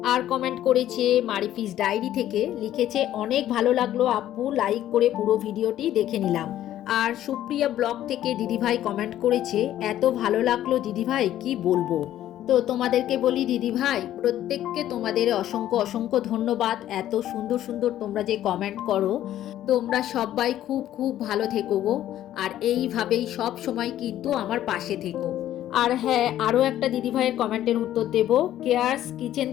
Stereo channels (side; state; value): right; quieter; 12.4 dB